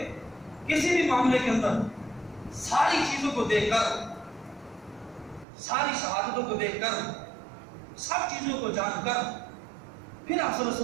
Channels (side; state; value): left; drops out; at 5.5 s